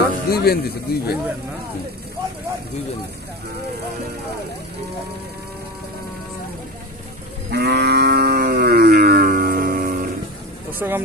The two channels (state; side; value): normal; both; correlation 0.25